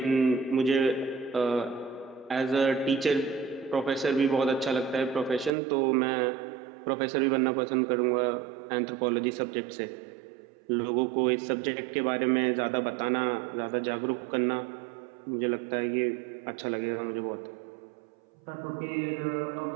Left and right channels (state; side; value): drops out; left; at 5.5 s